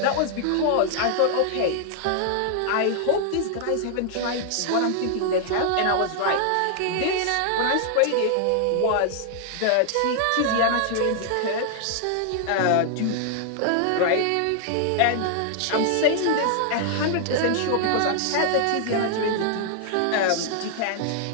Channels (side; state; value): both; different; correlation 0.00